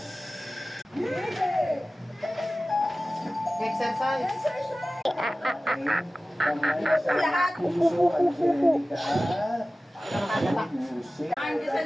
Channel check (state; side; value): normal; both; correlation 0.96